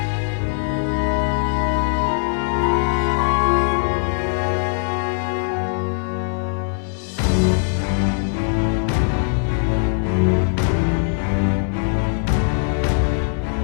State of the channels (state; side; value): silent; right; 65 dB below the other